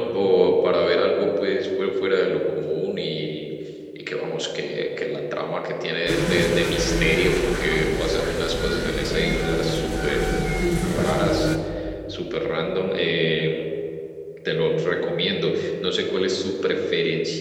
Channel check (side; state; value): both; identical; correlation 1.00